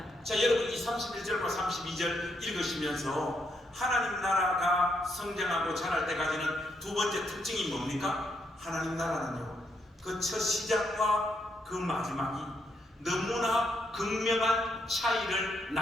자, 여러분 이 31절과 32절 읽으시면서 하나님 나라가 성장하고 자랄 때까지는 두 번째 특징이 뭡니까? 하나님 나라는요, 그 첫 시작과 그 마지막이 너무나 극명한 차이를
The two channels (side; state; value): both; normal; correlation 0.77